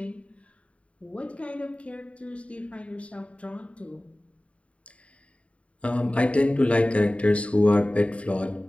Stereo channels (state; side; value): late; right; 0.064 ms